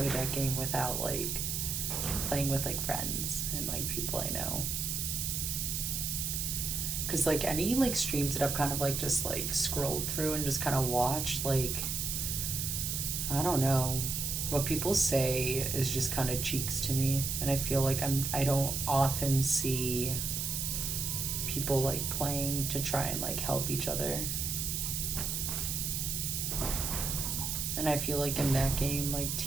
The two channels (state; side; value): noise; right; hiss, 1 dB below the sound